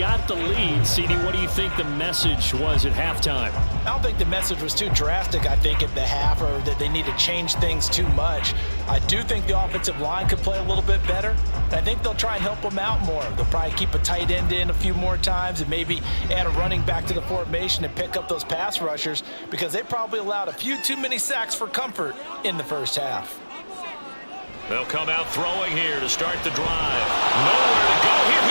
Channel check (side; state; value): both; inverted; correlation -1.00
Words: the lead. CD, what do you think the message was at halftime? I don't think the message was too drastic, I think, at the half, or that they need to change things too much. I do think the offensive line could play a little bit better. I think they'll try and help them out more. They'll probably keep a tight end in a few more times and maybe add a running back to the formation and pick up those pass rushers because they probably allowed a few too many sacks for comfort in the first half. They'll come out throwing here to start the drive. Nowhere to go here.